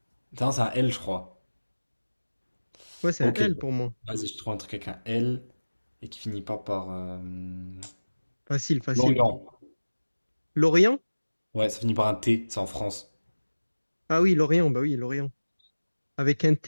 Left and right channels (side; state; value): both; inverted; correlation -1.00